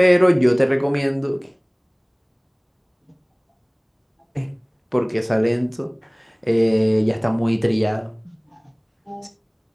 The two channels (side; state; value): both; identical; correlation 1.00